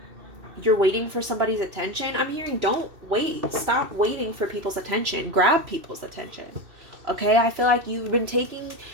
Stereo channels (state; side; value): late; left; 2.7 ms